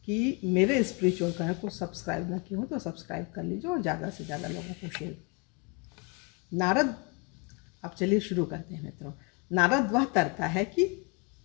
कि मेरे स्पिरिचुअल कनेक्ट को सब्सक्राइब ना किए हो तो सब्सक्राइब कर लीजिए और ज़्यादा से ज़्यादा लोगों को शेयर। नारद, अब चलिए शुरू करते हैं मित्रों। नारद वह तरता है कि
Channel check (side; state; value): right; quieter; 30.8 dB